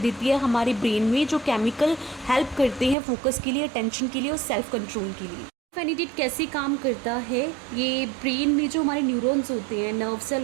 है हमारे ब्रेन में, जो केमिकल हेल्प करते हैं फोकस के लिए, अटेंशन के लिए और सेल्फ कंट्रोल के लिए। फेनिडेट कैसे काम करता है, ये ब्रेन में जो हमारे न्यूरॉन्स होते हैं, नर्व सेल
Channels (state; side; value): drops out; left; at 3.0 s